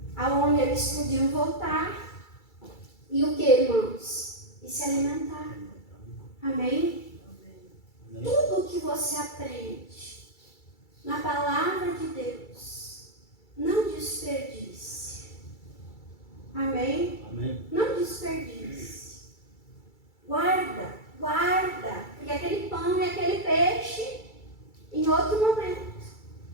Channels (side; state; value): right; late; 2.3 ms